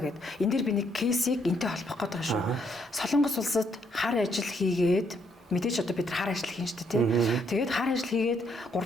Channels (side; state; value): both; normal; correlation 0.72